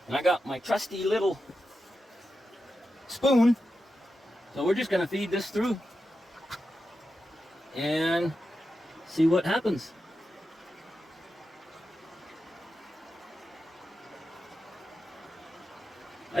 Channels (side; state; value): both; normal; correlation 0.89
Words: And I got my trusty little spoon. So we're just going to feed this through and see what happens.